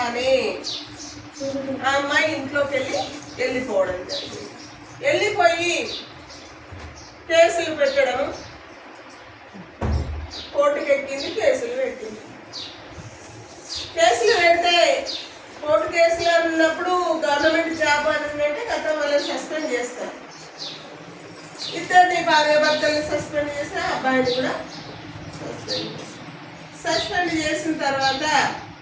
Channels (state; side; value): identical; both; correlation 1.00